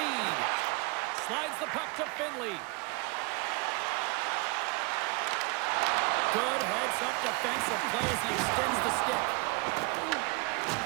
Slides the puck to Finley. Good heads-up defensive play as he extends the stick.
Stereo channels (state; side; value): quieter; left; 27.7 dB